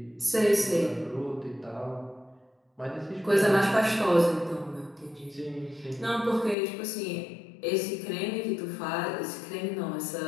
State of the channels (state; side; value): drops out; right; at 6.6 s